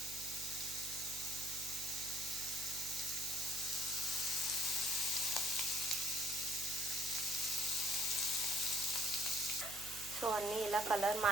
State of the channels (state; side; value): noise; right; hum, 15 dB below the sound